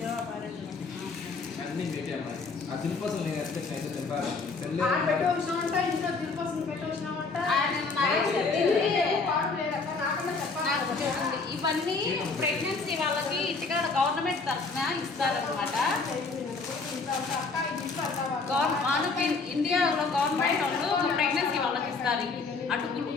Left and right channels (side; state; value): right; quieter; 4.2 dB